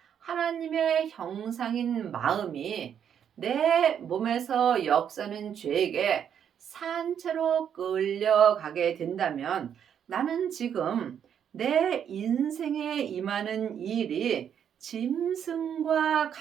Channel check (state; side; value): quieter; left; 8.6 dB